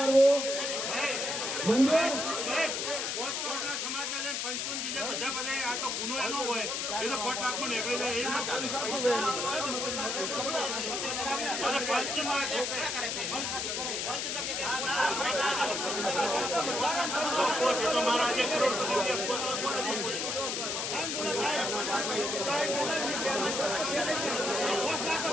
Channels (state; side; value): noise; left; hiss, 1 dB below the sound